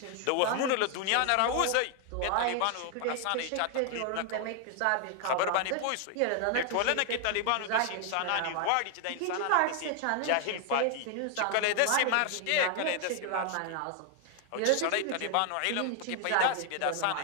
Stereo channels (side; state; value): both; different; correlation 0.00